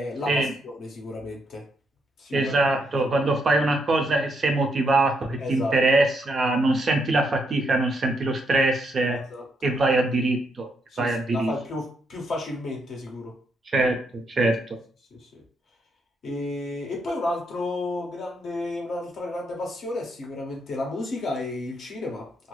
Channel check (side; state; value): both; normal; correlation 0.77